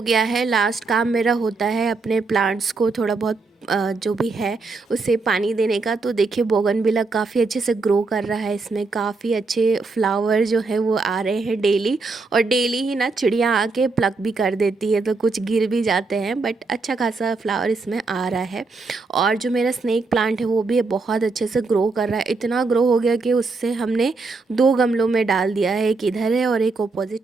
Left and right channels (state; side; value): quieter; left; 3.9 dB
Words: गया है, लास्ट काम मेरा होता है अपने प्लांट्स को थोड़ा बहुत जो भी है उसे पानी देने का। तो देखिए बोगनविला काफ़ी अच्छे से ग्रो कर रहा है, इसमें काफ़ी अच्छे फ्लावर जो है वो आ रहे हैं डेली। और डेली ही ना चिड़िया आके प्लक भी कर देती है, तो कुछ गिर भी जाते हैं, बट अच्छा खासा फ्लावर इसमें आ रहा है। और जो मेरा स्नेक प्लांट है वो भी बहुत अच्छे से ग्रो कर रहा है, इतना ग्रो हो गया कि उससे हमने 2 गमलों में डाल दिया है, एक इधर है और एक